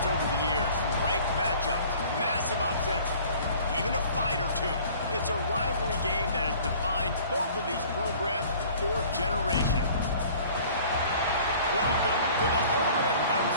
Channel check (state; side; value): inverted; both; correlation -0.49